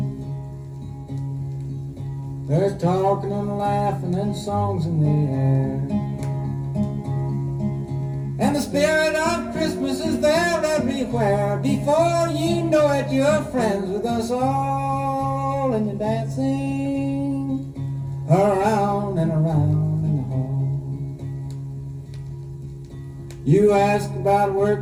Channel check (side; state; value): both; identical; correlation 1.00